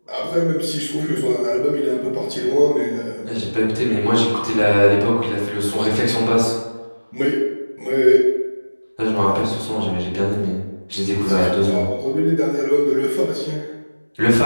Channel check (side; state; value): both; inverted; correlation -1.00